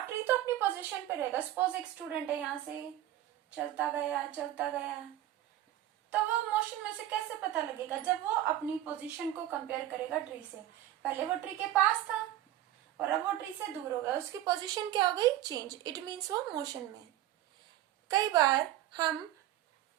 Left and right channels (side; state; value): left; quieter; 13.4 dB